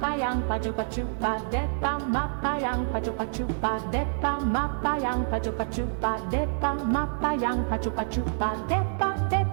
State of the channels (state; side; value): silent; left; digital silence